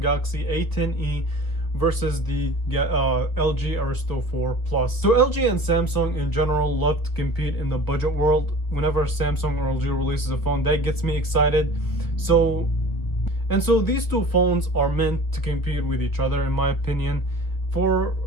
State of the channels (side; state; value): right; late; 1.6 ms